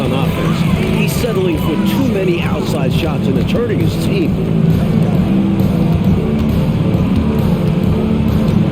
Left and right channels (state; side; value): identical; both; correlation 1.00